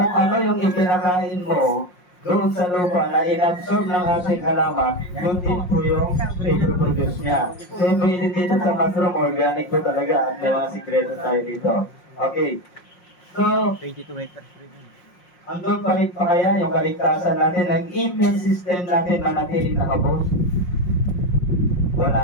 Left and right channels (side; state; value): right; late; 5.6 ms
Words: ano yung ipinakain mo doon sa lupa na inabsorb ng ating halaman, yun din po yung i-produce niya. Same way din dito sa mushroom, organic po talaga. At may mga sikreto tayo dito. Okay. So, andun pa rin pa kaya yung kaligtasan natin, ang immune system natin manatiling nakabos? Wala